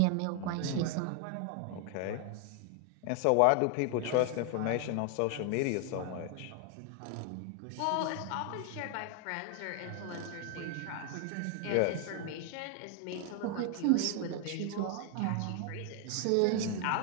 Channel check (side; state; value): both; different; correlation 0.00